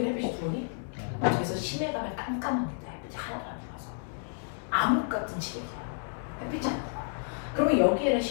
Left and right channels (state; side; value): silent; right; digital silence